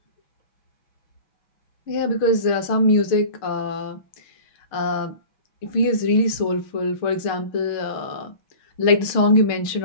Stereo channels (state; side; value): late; right; 6.5 ms